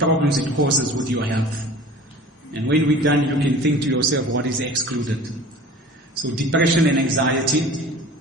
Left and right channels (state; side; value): normal; both; correlation 0.42